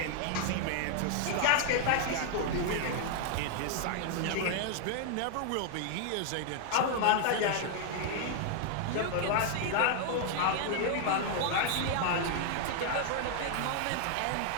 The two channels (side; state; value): both; different; correlation 0.00